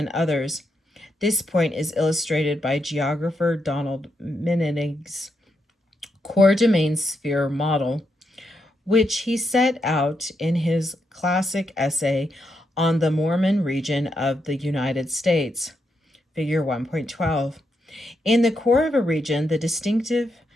others. This point is illustrated by geographer Donald Mening's core domain sphere model, which he set out in his classic essay on the Mormon region of the United States, Figure 1.12. In the core of a region, the distinctive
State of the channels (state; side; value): normal; both; correlation 0.81